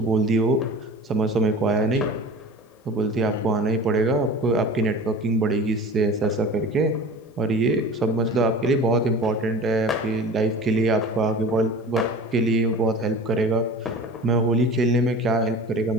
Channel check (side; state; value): both; normal; correlation 0.38